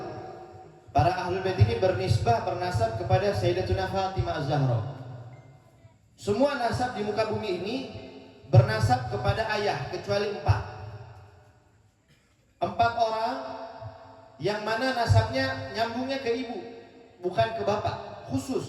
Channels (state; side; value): identical; both; correlation 1.00